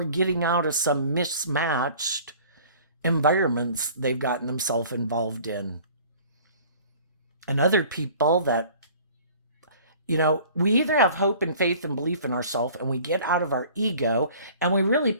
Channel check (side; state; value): both; inverted; correlation -0.48